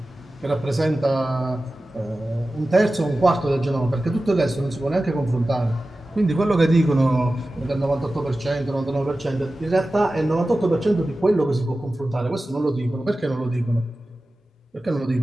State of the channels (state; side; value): normal; both; correlation 0.95